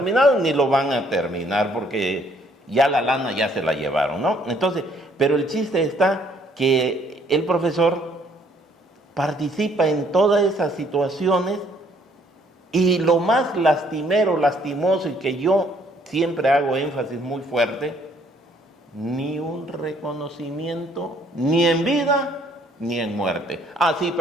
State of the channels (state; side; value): normal; both; correlation 0.64